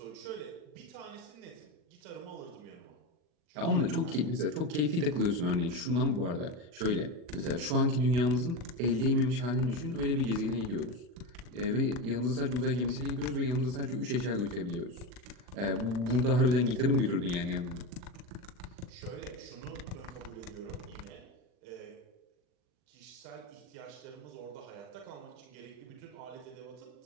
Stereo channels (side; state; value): left; late; 40 ms